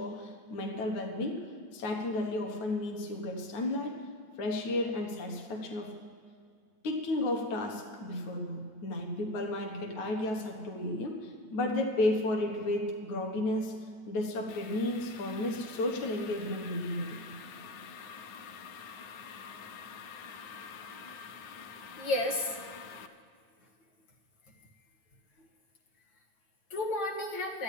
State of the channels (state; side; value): late; right; 9.0 ms